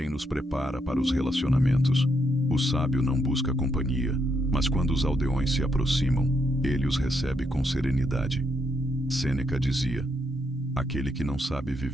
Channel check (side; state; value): both; normal; correlation 0.78